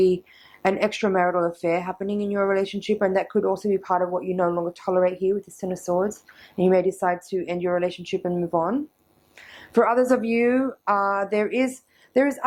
an extramarital affair happening in your relationship, and that could also be part of what you no longer tolerate here with this 10 of Swords, and you may decide to end your relationship and move on. For others of you, there is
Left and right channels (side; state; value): both; identical; correlation 1.00